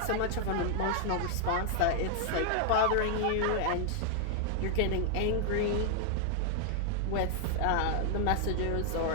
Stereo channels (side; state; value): both; different; correlation -0.01